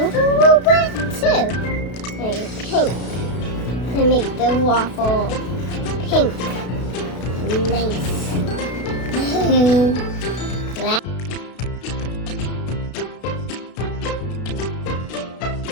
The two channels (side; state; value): right; late; 33 ms